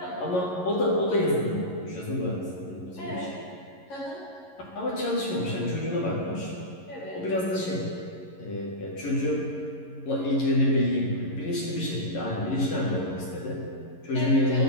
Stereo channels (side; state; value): right; late; 11 ms